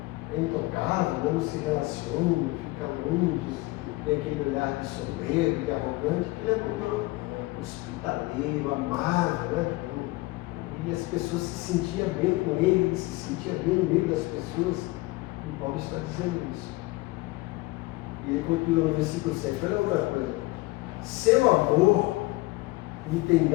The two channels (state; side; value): quieter; right; 21.4 dB